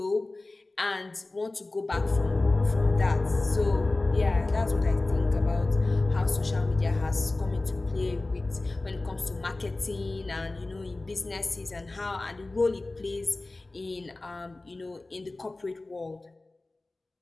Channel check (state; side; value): quieter; right; 3.0 dB